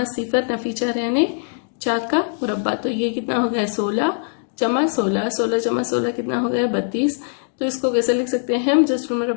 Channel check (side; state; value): right; silent; digital silence